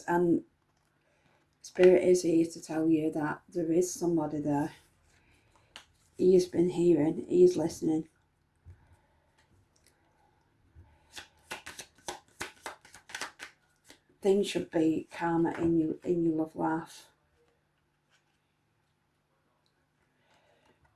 and Spirit is here to tell you that there is somebody there. He has been hearing, he is listening. Things should be calmer in your love life.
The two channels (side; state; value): both; identical; correlation 1.00